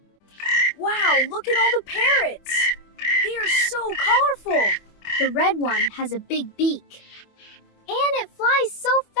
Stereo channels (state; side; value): late; right; 25 ms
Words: Wow, look at all the parrots. They are so colorful. The red one has a big beak. And it flies so